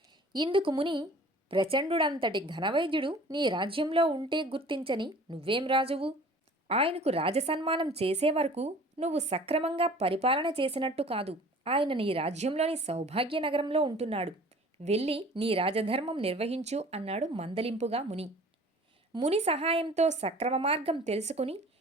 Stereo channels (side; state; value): both; normal; correlation 0.47